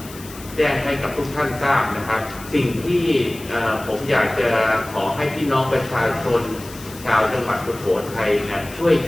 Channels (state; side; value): noise; left; hiss, 17 dB below the sound